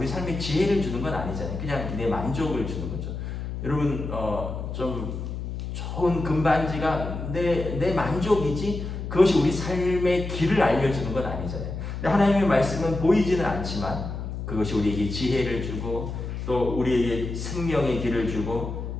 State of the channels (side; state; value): left; noise; hum, 6 dB below the sound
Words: 삶에 지혜를 주는 건 아니잖아요. 그냥 내 만족을 주는 거죠. 여러분, 좀 좋은 금반지가 내 만족이지 그것이 우리 삶의 길을 알려주는 건 아니잖아요. 근데 하나님의 말씀은 보이지는 않지만 그것이 우리에게 지혜를 주고 또 우리에게 생명의 길을 주고